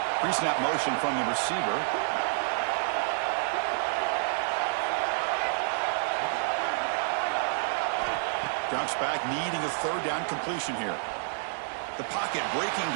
Pre-snap motion from the receiver. Drops back, needing a third down completion here. The pocket breaking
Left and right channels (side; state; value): left; silent; digital silence